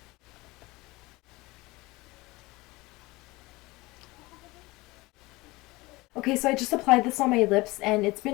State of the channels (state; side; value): quieter; right; 21.8 dB